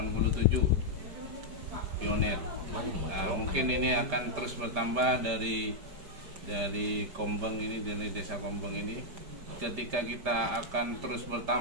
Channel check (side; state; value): left; late; 5.0 ms